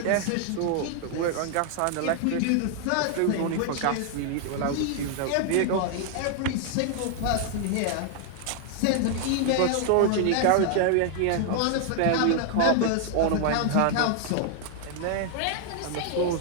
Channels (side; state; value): both; different; correlation 0.00